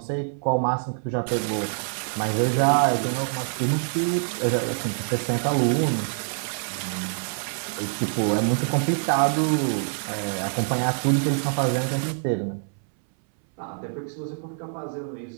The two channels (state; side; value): silent; left; 61 dB below the other